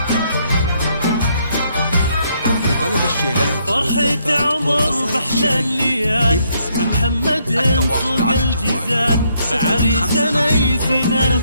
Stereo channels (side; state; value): both; inverted; correlation -0.72